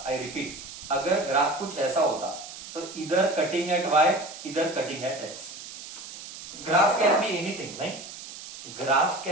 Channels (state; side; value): noise; right; hiss, 12 dB below the sound